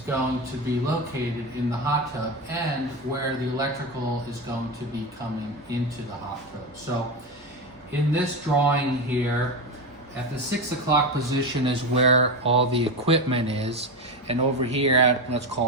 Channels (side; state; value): both; normal; correlation 0.17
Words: to be located in the hot tub and where the electrical is going to be coming into the hot tub. So in this drawing here, at the 6 o'clock position is where all the equipment is, and over here at, let's